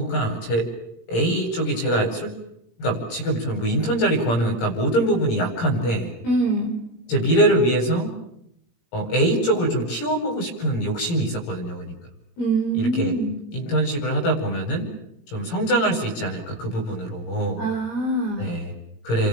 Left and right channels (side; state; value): right; late; 17 ms